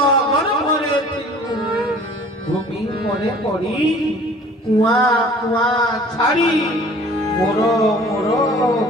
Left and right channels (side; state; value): both; normal; correlation 0.49